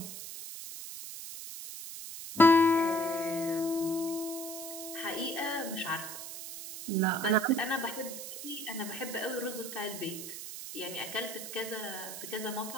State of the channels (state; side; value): noise; right; hiss, 9 dB below the sound